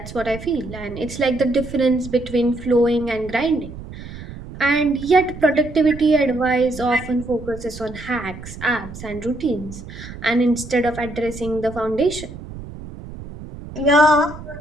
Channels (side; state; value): right; noise; rumble, 13 dB below the sound